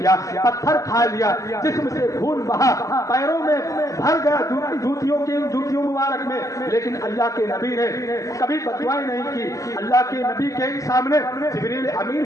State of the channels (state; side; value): late; right; 0.16 ms